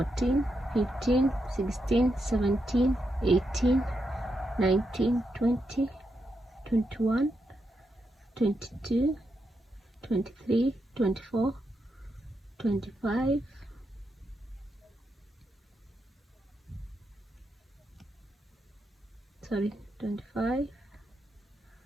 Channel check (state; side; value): normal; both; correlation 0.83